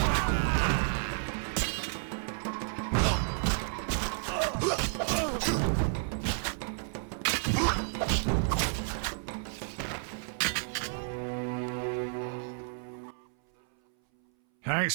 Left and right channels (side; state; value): left; silent; 57 dB below the other